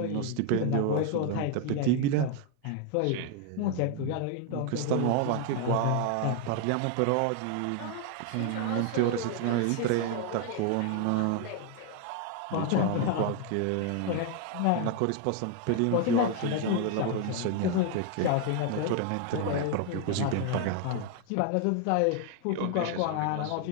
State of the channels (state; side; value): different; both; correlation 0.00